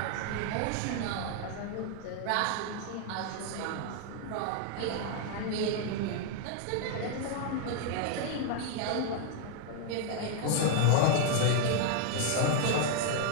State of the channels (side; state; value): both; different; correlation 0.00